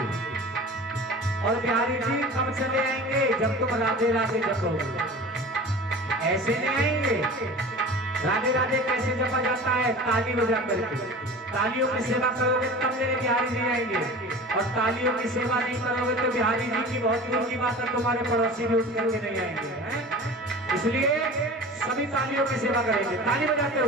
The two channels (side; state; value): both; normal; correlation 0.37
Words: और बिहारी जी कब चले आएंगे? जब तुम राधे राधे जपोगे। ऐसे नहीं आएंगे। राधे राधे कैसे जपा जाता है? ताली बजा करके। तालियों की सेवा करोगे तब मेरे बिहारी जी आएंगे, और तालियों की सेवा नहीं करोगे तो बिहारी जी की बहुत दूर की बात है, तुम्हारे पड़ोसी भी उठ करके नहीं आएंगे। इसलिए सभी तालियों की सेवा करेंगे, ताली बजाते